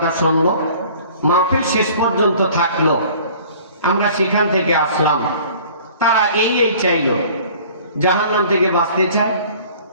শুনলো, মাহফিল শেষ পর্যন্ত থাকলো, আমরা সেখান থেকে আসলাম। তারা এই চাইল, জাহান্নাম থেকে বাঁচতে চায়,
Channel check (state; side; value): inverted; both; correlation -0.49